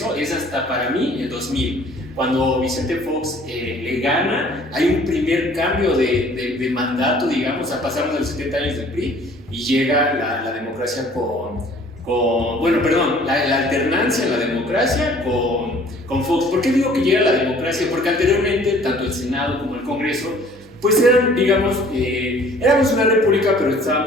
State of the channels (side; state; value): both; normal; correlation 0.53